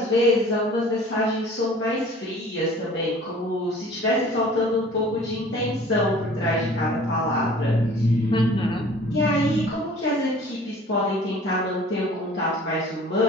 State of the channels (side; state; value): both; normal; correlation 0.48